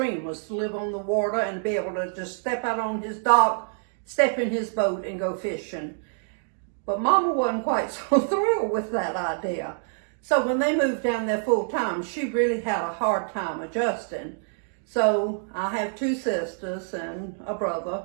was to live on the water and be able to just step out on his dock, step in his boat and go fishing. But Mama wasn't quite so thrilled with that idea. So when they moved down there full time, she really had a hard time adjusting. So I have two sisters and a brother.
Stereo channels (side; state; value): left; silent; digital silence